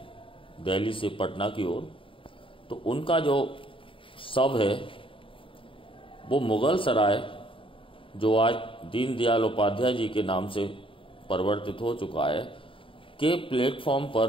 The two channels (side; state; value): right; late; 0.25 ms